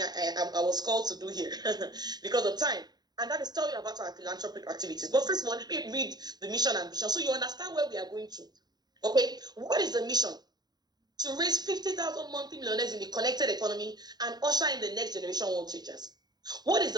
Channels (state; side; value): late; left; 0.20 ms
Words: was called to do here because of time. And that is tell you about our philanthropic activities. But first of all, let me read the mission and vision so you understand where we are going to. Okay, what is the mission? To raise 50,000 monthly millionaires in the connected economy and usher in the next generation world changers. What is